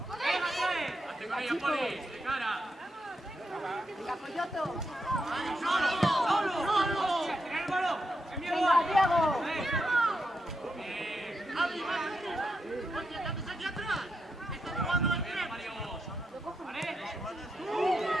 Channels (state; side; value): normal; both; correlation 0.84